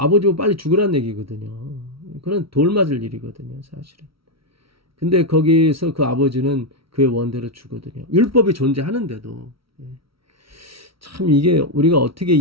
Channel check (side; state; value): left; late; 0.75 ms